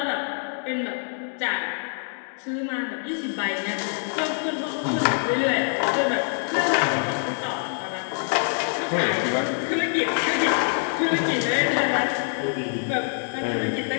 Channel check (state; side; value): silent; right; 57 dB below the other